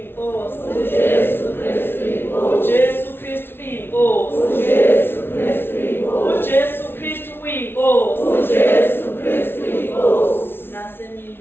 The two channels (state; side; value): late; right; 0.11 ms